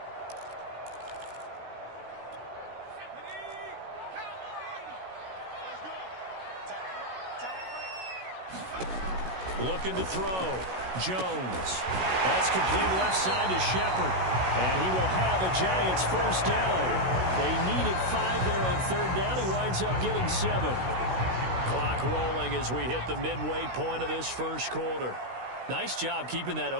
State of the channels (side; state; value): left; late; 16 ms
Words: Looking to throw. Jones. That's complete left side to Shepard. And he will have a Giants first down. They needed 5 there on third down. He winds up getting 7. Clock rolling as we hit the midway point of this first quarter. Nice job keeping that